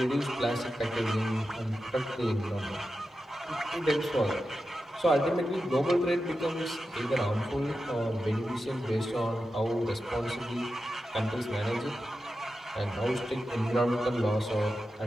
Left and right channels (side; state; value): both; normal; correlation 0.91